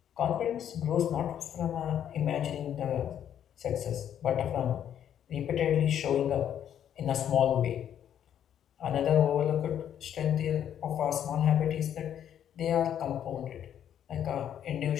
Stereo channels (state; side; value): quieter; right; 9.8 dB